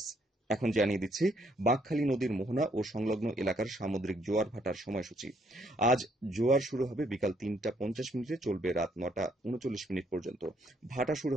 এখন জানিয়ে দিচ্ছি বাঁকখালী নদীর মোহনা ও সংলগ্ন এলাকার সামুদ্রিক জোয়ার ভাটার সময়সূচি। আজ জোয়ার শুরু হবে বিকাল 3টা 50 মিনিটে, চলবে রাত 9টা 39 মিনিট পর্যন্ত। ভাটা শুরু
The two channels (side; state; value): both; normal; correlation 0.69